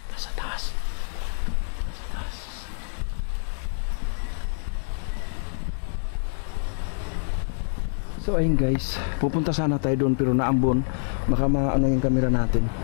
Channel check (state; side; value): silent; right; 60 dB below the other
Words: Nasa taas. Nasa taas. So ayun guys, pupunta sana tayo doon pero naambon. Baka maano yung camera natin.